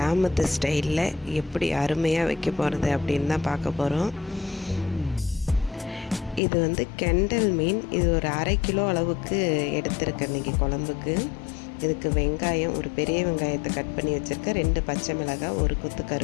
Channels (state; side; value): drops out; right; at 6.4 s